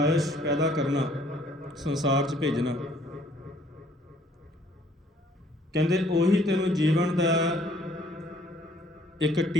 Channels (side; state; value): both; normal; correlation 0.61